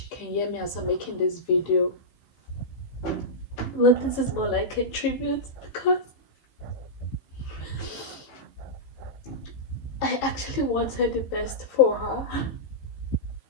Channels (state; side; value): late; right; 16 ms